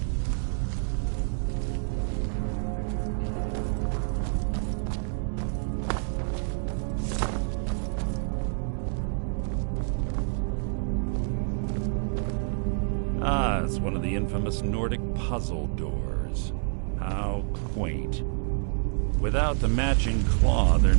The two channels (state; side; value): silent; left; 59 dB below the other